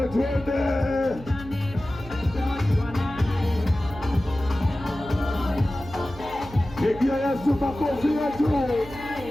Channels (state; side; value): noise; right; hum, 16 dB below the sound